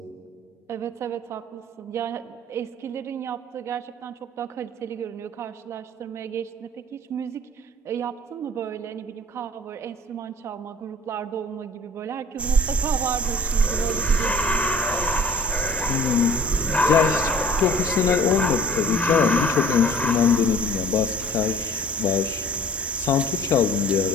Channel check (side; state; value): both; normal; correlation 0.50